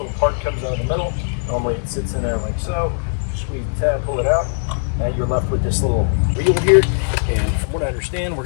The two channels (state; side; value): silent; right; digital silence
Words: part comes out of the middle. Normally it sits in there like so. Squeeze the tab, pull it out. Now you're left with this little wheel here. And from what I understand, we're